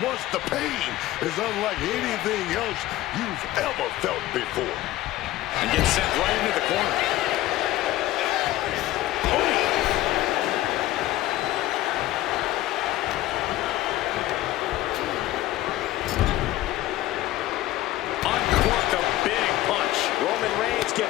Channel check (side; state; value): right; quieter; 15.7 dB